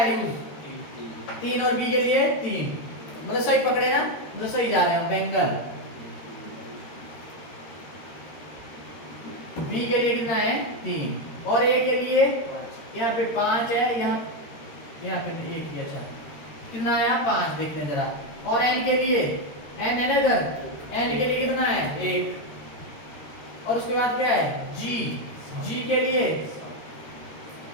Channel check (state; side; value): late; right; 13 ms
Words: यूज 3 और बी के लिए 3, मतलब सही पकड़े ना, मतलब सही जा रहे हैं बेंगल। बी के लिए कितना है 3, और ए के लिए यहाँ पे 5 है, यहाँ पे 1 ही, अच्छा कितना आया 5, देखने जरा। और एन के लिए, एन है ना इधर, एन के लिए कितना है 1, और उसके बाद क्या है जी, जी के लिए